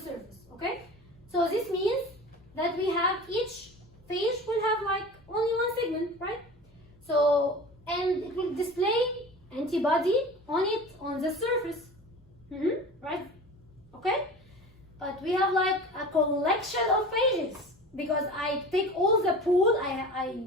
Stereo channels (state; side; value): normal; both; correlation 0.37